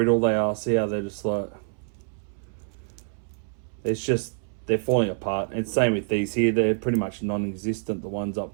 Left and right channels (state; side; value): silent; left; 61 dB below the other